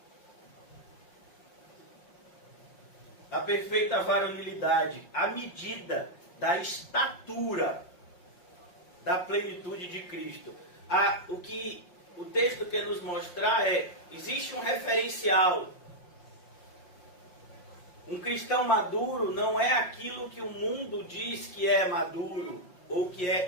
A perfeita varonilidade, a medida da estatura da plenitude de Cristo. O que o texto quer nos mostrar existe um referencial. Um cristão maduro não é aquilo que o mundo diz que é maduro ou que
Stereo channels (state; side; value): late; right; 5.6 ms